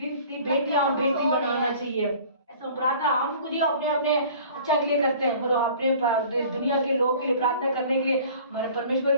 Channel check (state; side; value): inverted; both; correlation -0.47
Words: बेटी बनाना चाहिए। प्रार्थना हम खुद ही अपने अपने अच्छा के लिए करते हैं, और अपने दुनिया के लोगों के लिए प्रार्थना करने के लिए हमारे परमेश्वर